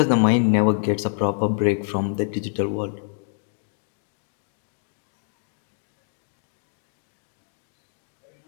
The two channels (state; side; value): silent; right; 61 dB below the other